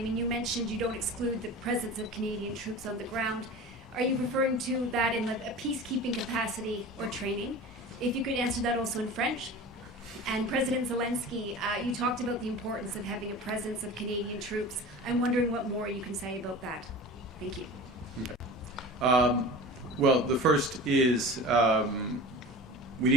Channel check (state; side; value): normal; both; correlation 0.36